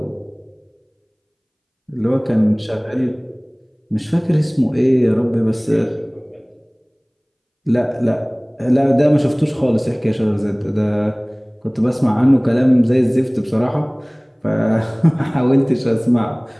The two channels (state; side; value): identical; both; correlation 1.00